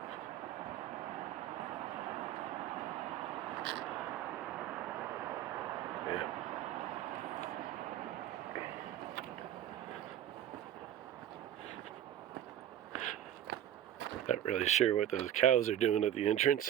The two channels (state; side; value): quieter; left; 11.3 dB